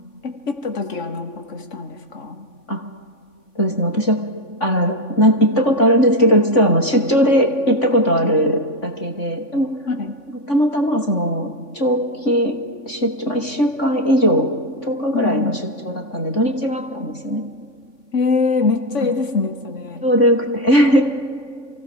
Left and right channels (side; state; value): right; late; 3.5 ms